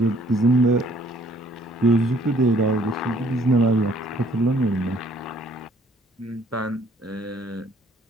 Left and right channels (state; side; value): normal; both; correlation 0.61